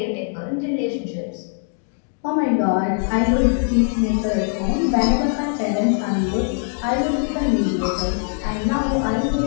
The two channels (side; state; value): right; silent; 63 dB below the other